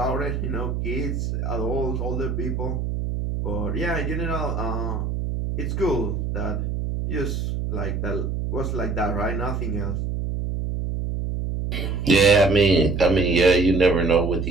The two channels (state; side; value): noise; right; hum, 2 dB below the sound